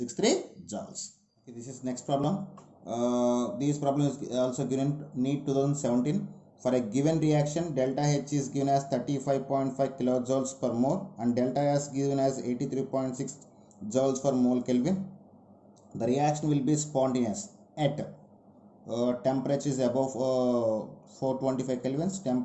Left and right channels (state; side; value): identical; both; correlation 1.00